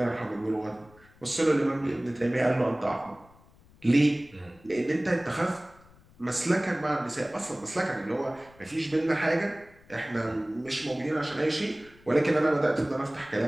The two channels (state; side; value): noise; left; rumble, 26 dB below the sound